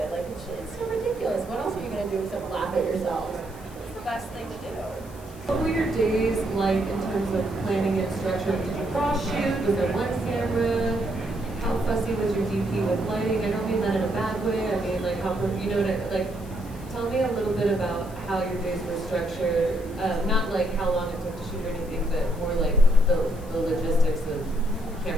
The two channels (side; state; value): left; noise; hiss, 22 dB below the sound